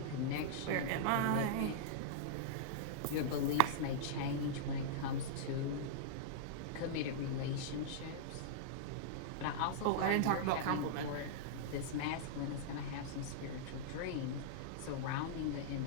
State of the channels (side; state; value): both; different; correlation -0.03